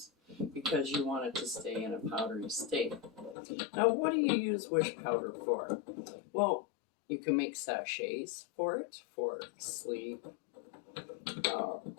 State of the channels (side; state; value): right; drops out; at 3.4 s